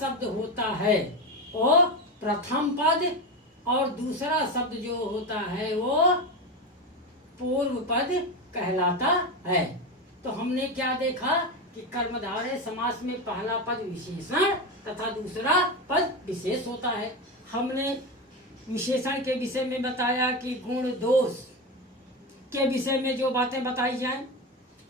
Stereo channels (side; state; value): both; normal; correlation 0.17